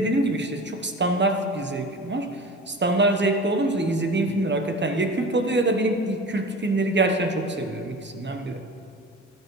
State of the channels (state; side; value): normal; both; correlation 0.36